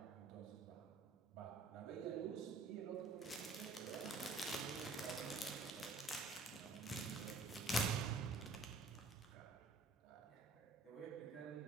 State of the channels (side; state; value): left; quieter; 3.5 dB